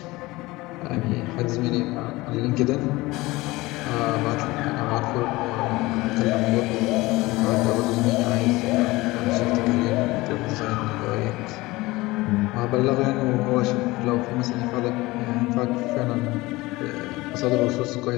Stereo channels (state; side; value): quieter; right; 20.6 dB